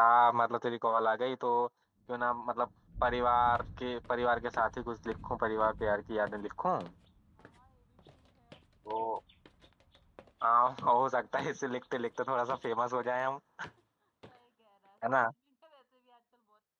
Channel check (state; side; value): identical; both; correlation 1.00